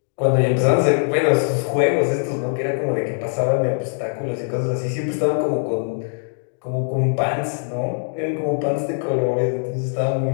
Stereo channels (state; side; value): silent; right; digital silence